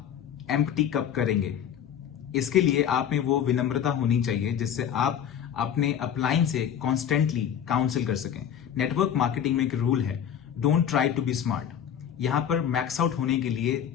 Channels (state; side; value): quieter; right; 9.1 dB